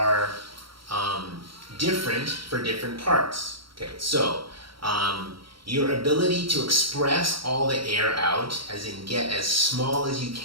different for different parts. Okay, so your ability to express all the air out, as in get as small as you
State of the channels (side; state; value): left; late; 0.74 ms